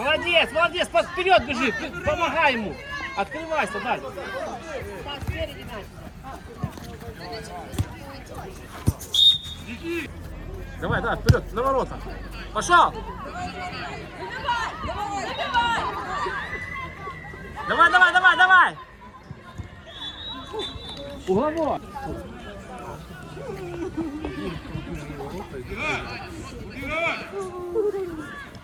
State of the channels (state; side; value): identical; both; correlation 1.00